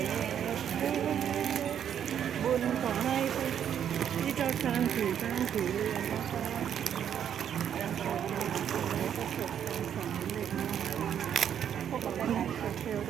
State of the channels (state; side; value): quieter; left; 9.1 dB